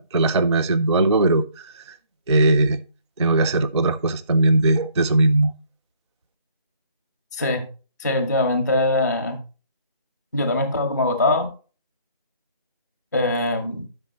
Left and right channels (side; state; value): both; inverted; correlation -0.61